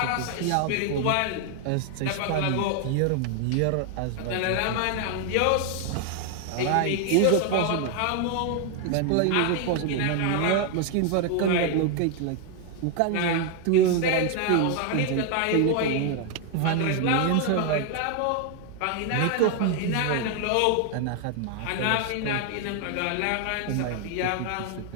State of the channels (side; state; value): both; different; correlation 0.00